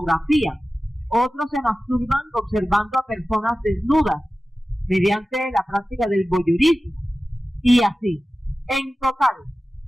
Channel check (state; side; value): normal; both; correlation 0.95